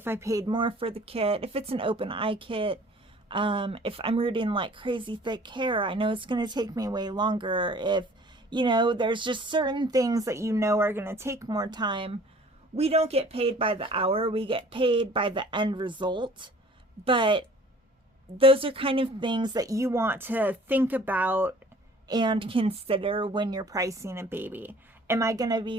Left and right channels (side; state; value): both; normal; correlation 0.51